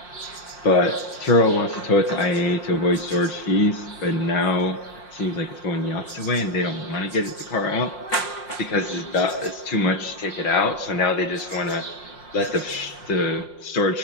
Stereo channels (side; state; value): right; late; 5.7 ms